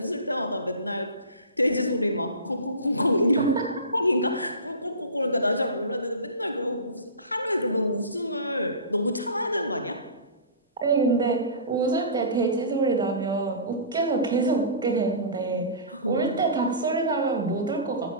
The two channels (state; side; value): inverted; both; correlation -0.33